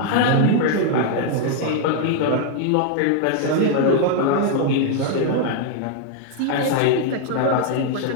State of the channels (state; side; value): different; both; correlation 0.00